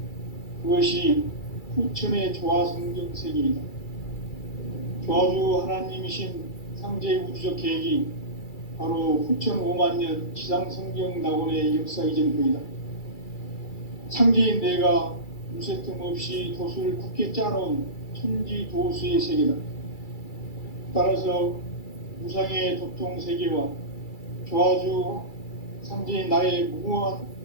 그것이 후천의 조화성경 세계이다. 조화주 하나님이신 상제의 우주적 계획이 바로 후천 5만 년 지상성경 낙원의 역사 이전표이다. 상제인 내가 무쇠 틈 없이 도수를 굳게 짜놓은 천지 도수의 세계다. 따라서 무상의 도통 세계와 조화주 상제인 나의 무궁한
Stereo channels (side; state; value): right; late; 2.3 ms